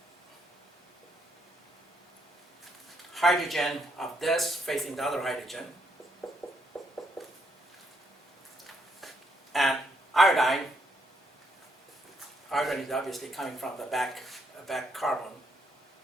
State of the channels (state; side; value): normal; both; correlation 0.75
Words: hydrogen of this facing the other hydrogen, and iodine. Iodine is obviously coming from the back carbon,